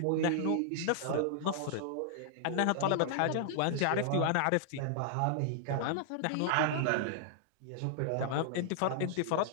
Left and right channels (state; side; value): different; both; correlation -0.01